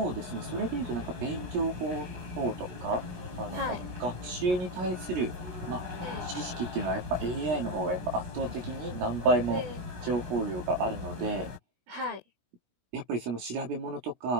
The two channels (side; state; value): left; late; 17 ms